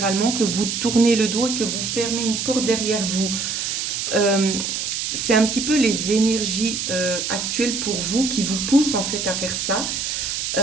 que vous tournez le dos et que vous fermez une porte derrière vous. Euh, c'est un petit peu les énergies actuelles pour vous qui vous poussent en fait à faire ça.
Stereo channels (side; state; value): right; noise; hiss, 2 dB below the sound